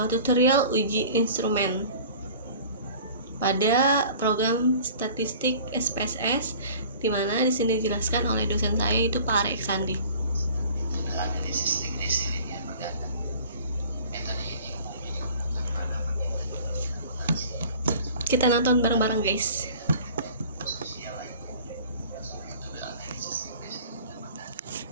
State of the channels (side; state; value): both; inverted; correlation -0.46